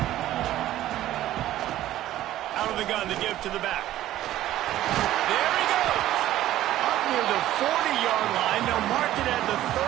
Out of the gun to give to the back. There he goes. Up near the 40-yard line. They'll mark it at the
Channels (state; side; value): quieter; left; 13.8 dB